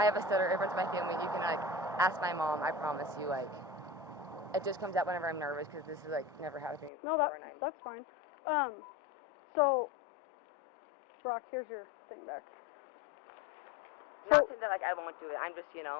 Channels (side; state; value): right; drops out; at 6.9 s